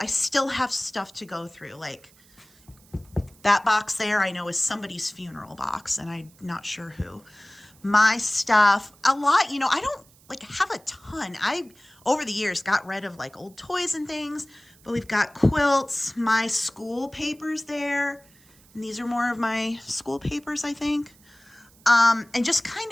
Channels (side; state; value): right; noise; hiss, 28 dB below the sound